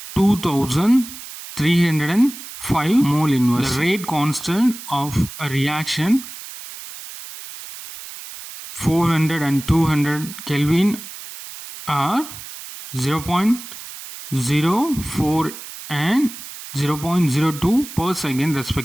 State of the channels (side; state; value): right; noise; hiss, 13 dB below the sound